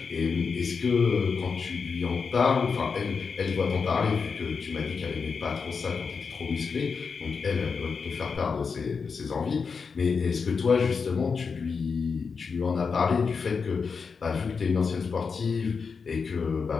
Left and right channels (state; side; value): quieter; right; 5.4 dB